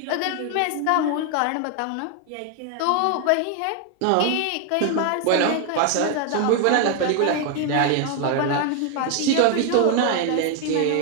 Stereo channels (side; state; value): both; different; correlation 0.01